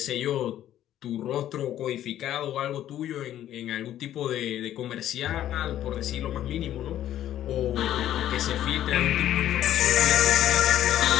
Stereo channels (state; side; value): quieter; right; 12.0 dB